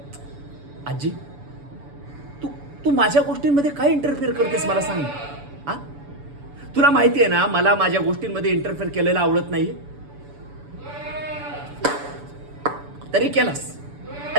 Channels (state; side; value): late; left; 7.0 ms